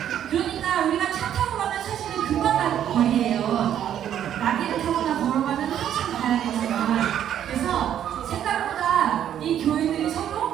그러니까 우리가 차 타고 가면 사실은 금방 가는 거리예요. 나귀를 타거나 걸어가면 한참 가야겠지만, 그래서 생각보다 이 교회들이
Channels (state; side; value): quieter; left; 10.2 dB